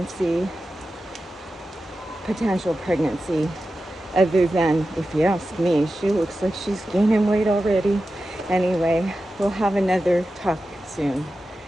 potential pregnancy, other than, if you ask me, she looks like she's gaining weight already. Anyway, we'll have another talk soon.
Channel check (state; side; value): normal; both; correlation 0.92